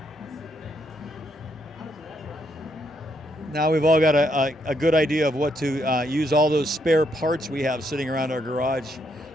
Now we've all got a good idea of what to use all those spare parts we have sitting around our garage.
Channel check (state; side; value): normal; both; correlation 0.75